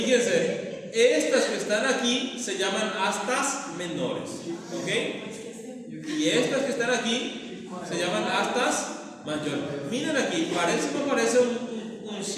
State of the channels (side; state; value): both; identical; correlation 1.00